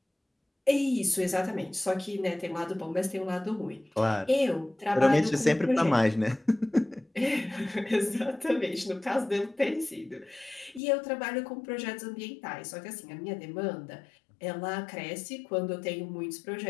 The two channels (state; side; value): drops out; right; at 10.8 s